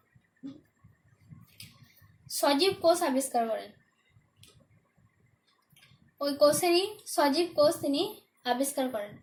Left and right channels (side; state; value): both; identical; correlation 1.00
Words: সজীব কোষ আবিষ্কার করেন। ওই কোষেরই সজীব কোষ তিনি আবিষ্কার করেন